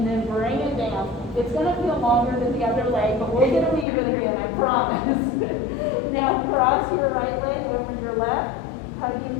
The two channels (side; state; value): right; drops out; at 3.9 s